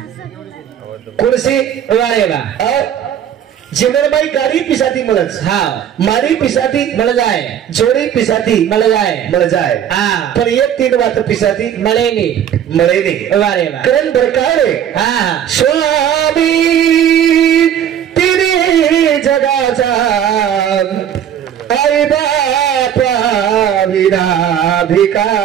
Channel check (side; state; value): left; quieter; 9.6 dB